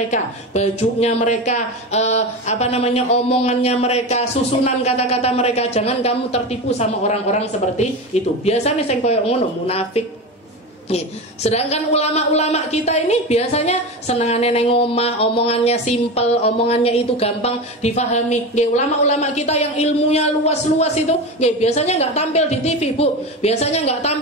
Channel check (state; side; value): normal; both; correlation 0.23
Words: bajunya mereka, omongannya mereka, susunan kata-kata mereka. Jangan kamu tertipu sama orang-orang seperti itu. Biasanya sing koyo ngono munafik. Sedangkan ulama-ulama kita ini biasanya senangannya neng omah, omongannya simpel, omongannya itu gampang difahami. Ulama-ulama kita yang ilmunya luas-luas itu, biasanya nggak tampil di TV, Bu. Biasanya nggak